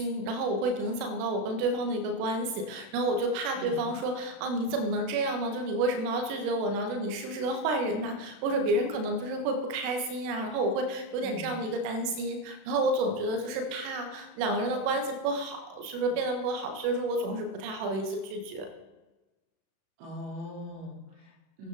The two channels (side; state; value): left; late; 36 ms